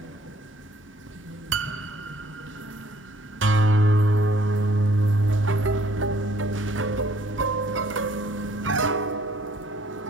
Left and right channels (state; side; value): normal; both; correlation 0.61